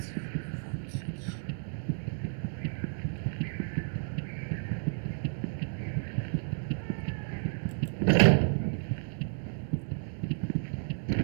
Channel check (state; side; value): silent; left; digital silence